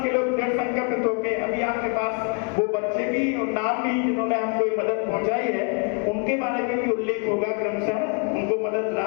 के लोग दृढ़ संकल्पित होकर, अभी आपके पास वो बच्चे भी और नाम भी जिन्होंने हमको ये मदद पहुंचाई है, उनके बारे में भी उल्लेख होगा क्रमशः, उनको मदद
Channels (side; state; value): right; quieter; 36.7 dB